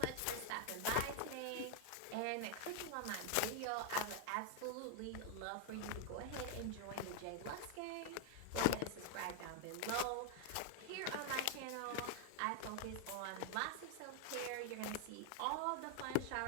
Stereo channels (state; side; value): different; both; correlation 0.00